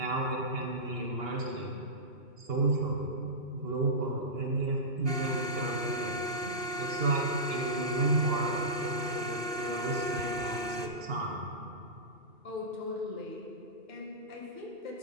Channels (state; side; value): late; left; 2.6 ms